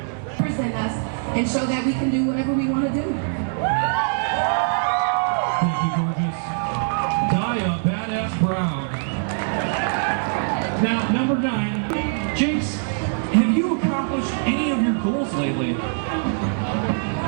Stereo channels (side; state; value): left; silent; 63 dB below the other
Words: Present us and show that we can do whatever we want to do. Thank you, gorgeous. Daya Badass Brown. Now, number 9, Jinx, have you accomplished any of your goals lately?